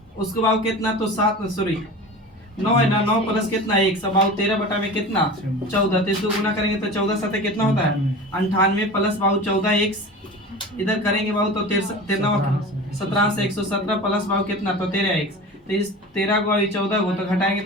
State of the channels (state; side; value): normal; both; correlation 0.34